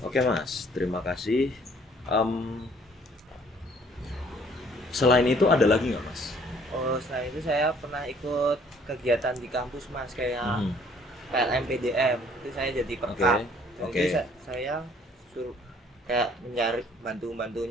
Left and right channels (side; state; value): both; normal; correlation 0.59